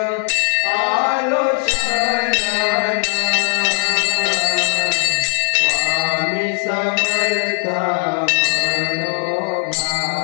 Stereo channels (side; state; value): right; silent; digital silence